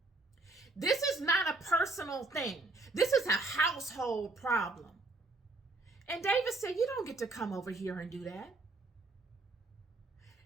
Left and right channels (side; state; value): left; quieter; 3.2 dB